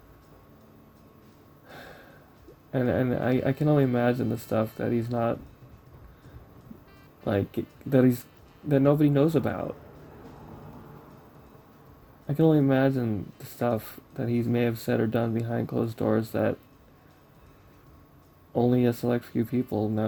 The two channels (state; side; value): identical; both; correlation 1.00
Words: And I can only imagine the stuff that he's not like that nobody knows about. I can only imagine the stuff that he may have said or done behind closed doors that only a select few people